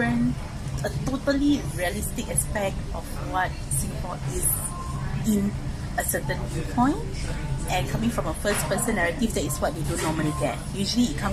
totally realistic aspect of what Singapore is in a certain viewpoint, and coming from a first-person narrative, that is what they don't normally get. Usually it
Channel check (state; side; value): identical; both; correlation 1.00